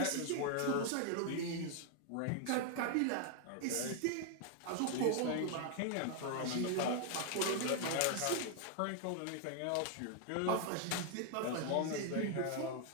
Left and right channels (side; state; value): both; different; correlation 0.00